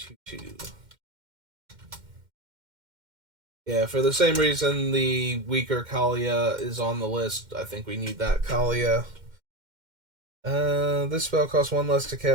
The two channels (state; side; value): late; left; 2.1 ms